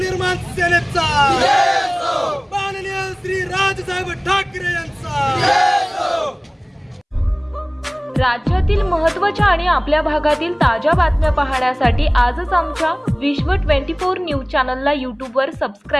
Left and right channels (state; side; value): identical; both; correlation 1.00